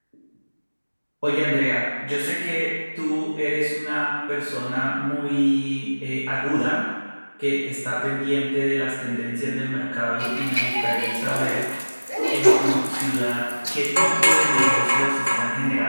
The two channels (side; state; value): both; inverted; correlation -1.00